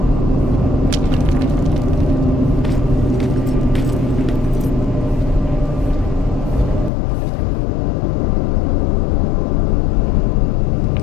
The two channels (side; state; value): right; drops out; at 6.9 s